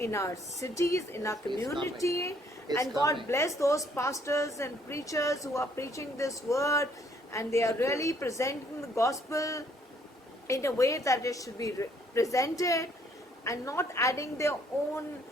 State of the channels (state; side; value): normal; both; correlation 0.65